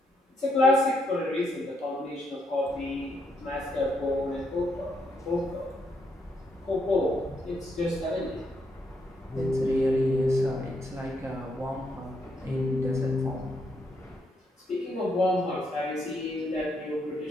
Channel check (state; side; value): normal; both; correlation 0.76